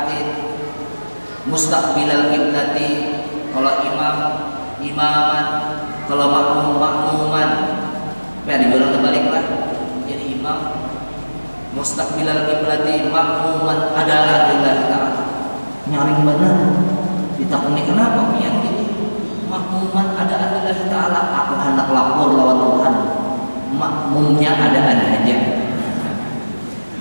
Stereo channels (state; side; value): inverted; both; correlation -1.00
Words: mustaqbilal qiblati. Kalau imaman, kalau makmuman, dibilang terbaliklah. Jadi imam mustaqbilal qiblati, makmuman adalah lillahi ta'ala. Nyaring benar. Ditakuni kenapa pian gini? Makmuman ada lillahi ta'ala. Aku hendak lapor lawan Tuhan. Makmumnya ada aja.